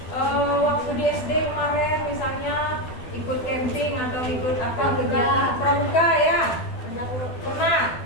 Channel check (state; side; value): late; right; 12 ms